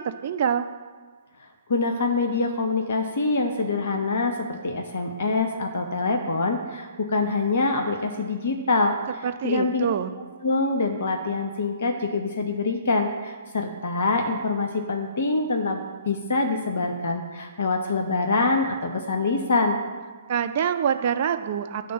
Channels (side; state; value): both; inverted; correlation -0.54